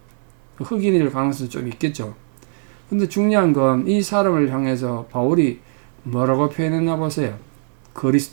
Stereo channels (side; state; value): left; silent; 65 dB below the other